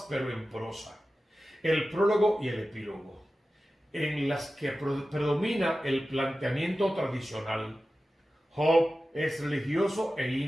pero en prosa, el prólogo y el epílogo, en las que predomina el planteamiento tradicional. Job es religioso e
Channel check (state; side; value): normal; both; correlation 0.94